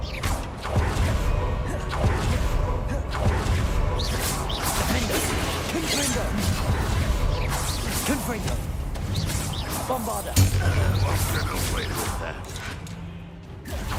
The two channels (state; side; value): identical; both; correlation 1.00